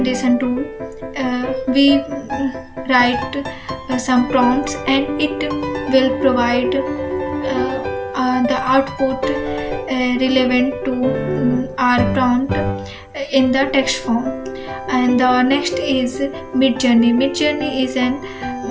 tool. We write some prompts and it will provide the output relevant to our prompt in the text form. And the next is Midjourney. Midjourney is an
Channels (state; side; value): identical; both; correlation 1.00